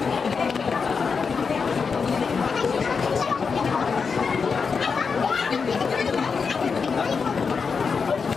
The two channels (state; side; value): quieter; right; 5.4 dB